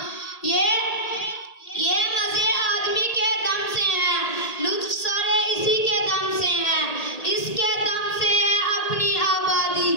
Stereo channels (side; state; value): right; late; 1.8 ms